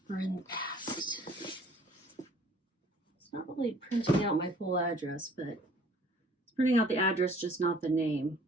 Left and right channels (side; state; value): both; normal; correlation 0.54